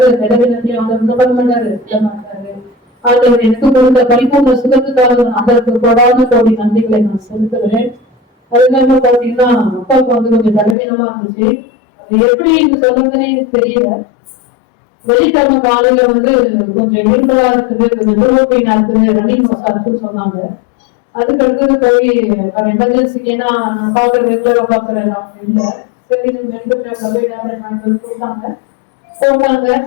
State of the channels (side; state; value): right; drops out; at 10.8 s